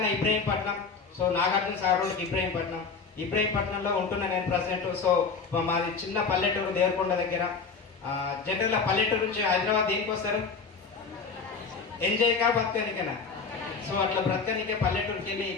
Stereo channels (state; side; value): quieter; right; 4.9 dB